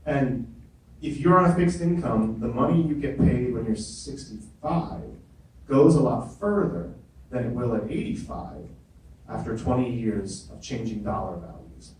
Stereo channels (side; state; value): both; identical; correlation 1.00